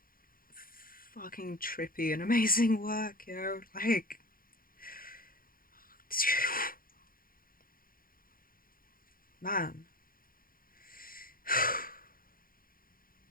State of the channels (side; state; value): right; late; 0.42 ms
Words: fucking trippy and amazing work, like man.